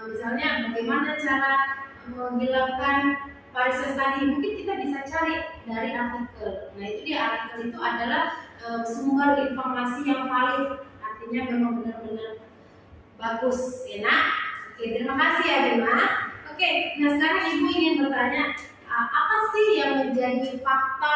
Misalnya bagaimana cara menghilangkan varises tadi, mungkin kita bisa cari dari artikel. Nah, itu dia artikel itu adalah sumber informasi yang valid. Artinya memang benar-benar bagus, enak. Oke, terima kasih ya Bima. Oke, nah sekarang Ibu ingin bertanya, apa sih yang menjadi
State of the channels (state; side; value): identical; both; correlation 1.00